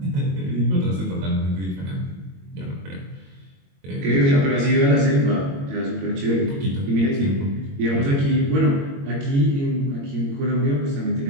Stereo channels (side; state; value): left; late; 22 ms